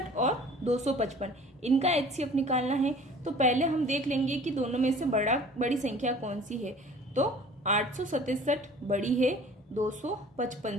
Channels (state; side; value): normal; both; correlation 0.48